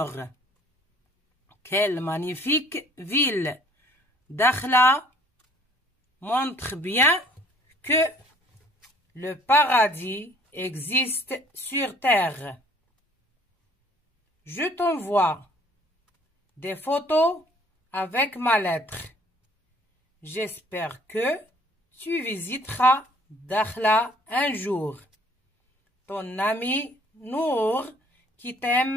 Quelle magnifique ville! Dakhla montre bien que le paradis existe sur terre. Je t'envoie des photos avec ma lettre. J'espère que tu visiteras Dakhla un jour. Ton ami Nour qui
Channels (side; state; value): both; normal; correlation 0.56